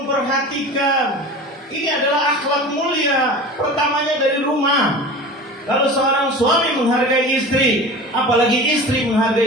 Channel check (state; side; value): normal; both; correlation 0.35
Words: ini adalah akhlak mulia. Pertamanya dari rumah. Kalau seorang suami menghargai istri, apalagi istri